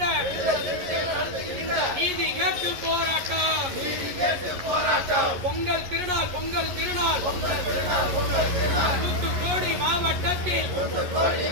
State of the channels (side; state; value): left; late; 11 ms